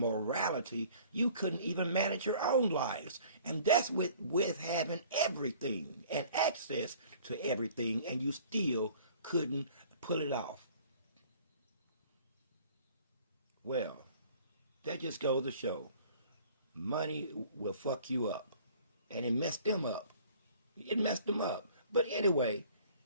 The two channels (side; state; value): both; inverted; correlation -0.52